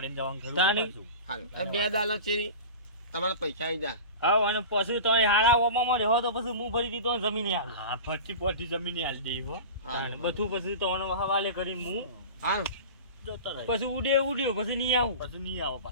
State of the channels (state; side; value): inverted; both; correlation -0.33